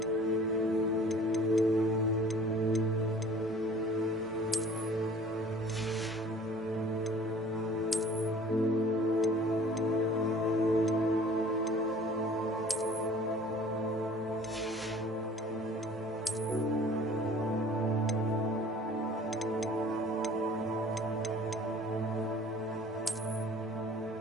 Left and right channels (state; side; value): normal; both; correlation 0.49